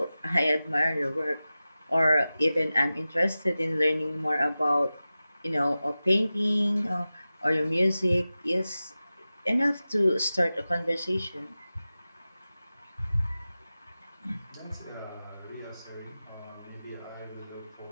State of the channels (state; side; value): inverted; both; correlation -0.95